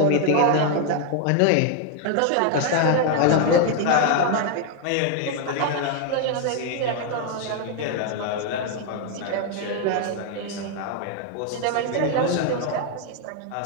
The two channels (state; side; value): different; both; correlation 0.00